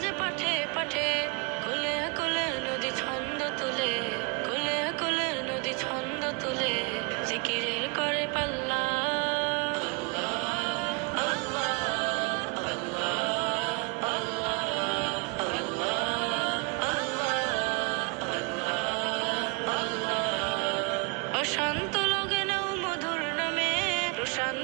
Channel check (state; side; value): quieter; left; 31.8 dB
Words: পাঠে পাঠে, কোলে কোলে নদী ছন্দ তুলে, কোলে কোলে নদী ছন্দ তুলে, জিকিরের করে পাল্লা। অশান্ত লগে নাও মধুর নামে,